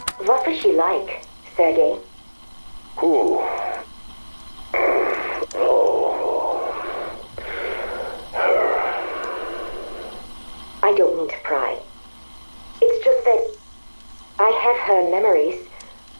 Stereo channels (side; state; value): both; inverted; correlation -1.00